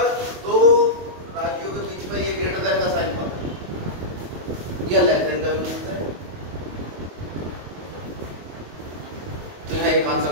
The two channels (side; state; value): left; late; 22 ms